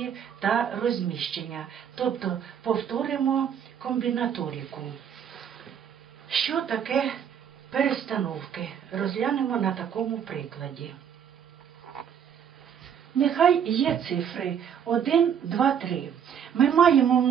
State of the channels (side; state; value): left; quieter; 8.3 dB